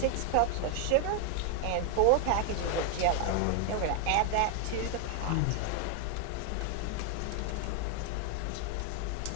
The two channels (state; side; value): different; both; correlation 0.01